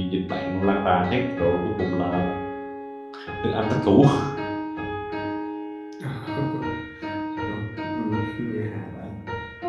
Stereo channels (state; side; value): identical; both; correlation 1.00